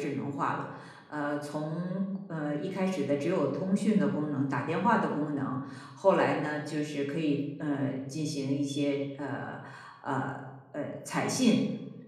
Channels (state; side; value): identical; both; correlation 1.00